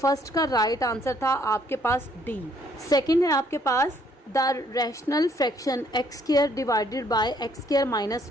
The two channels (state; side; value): normal; both; correlation 0.66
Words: का राइट आंसर था आपके पास डी। सेकंड है आपके पास the rational fraction X square divided by X square minus